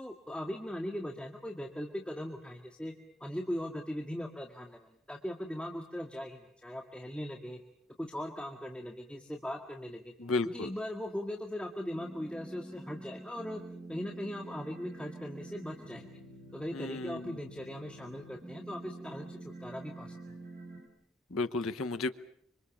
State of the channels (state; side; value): normal; both; correlation 0.78